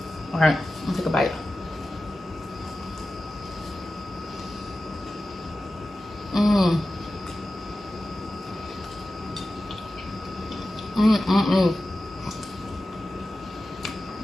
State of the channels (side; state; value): both; normal; correlation 0.94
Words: All right, I'll take a bite.